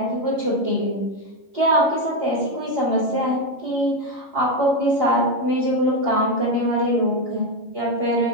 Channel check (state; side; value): late; left; 11 ms